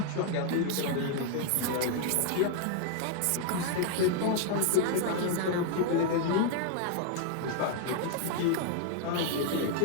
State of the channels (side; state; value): both; different; correlation 0.00